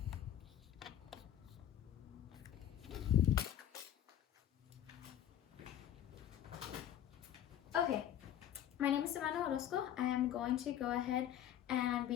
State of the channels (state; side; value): quieter; right; 10.9 dB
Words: Okay, my name is Savannah Orozco. I am going to go ahead and